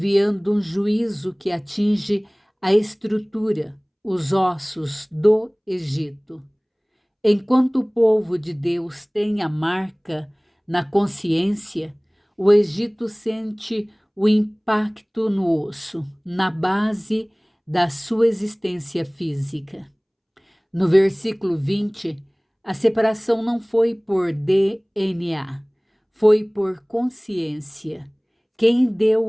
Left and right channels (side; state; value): both; identical; correlation 1.00